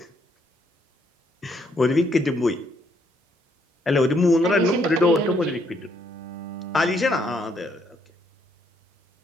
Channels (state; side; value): normal; both; correlation 0.71